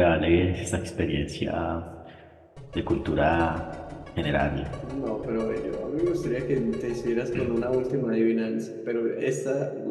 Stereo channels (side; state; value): both; identical; correlation 1.00